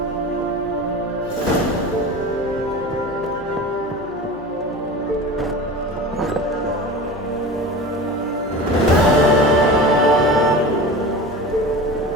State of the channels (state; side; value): noise; right; hum, 22 dB below the sound